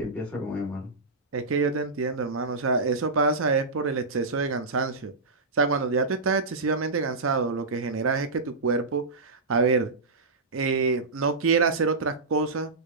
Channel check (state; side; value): quieter; left; 3.6 dB